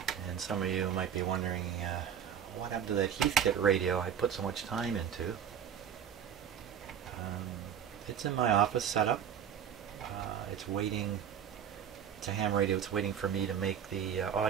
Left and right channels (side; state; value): left; quieter; 8.5 dB